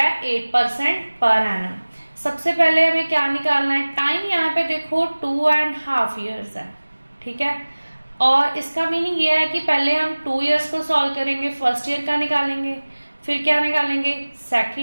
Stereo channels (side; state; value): both; inverted; correlation -1.00